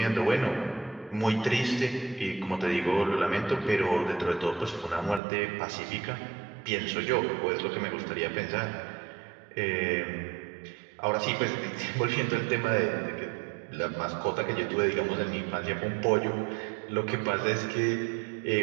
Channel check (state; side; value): drops out; left; at 5.2 s